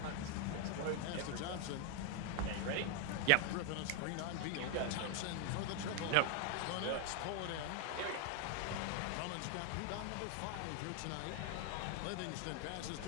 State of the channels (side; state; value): both; different; correlation 0.01